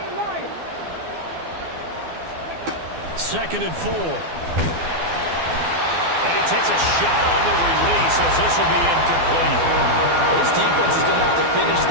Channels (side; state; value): left; late; 12 ms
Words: Lions. Second and 4. And he takes a shot on the release as this will be incomplete. This defense is going to have to finish